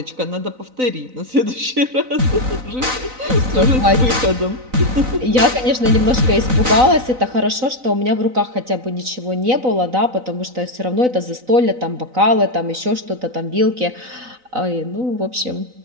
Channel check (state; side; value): late; left; 3.9 ms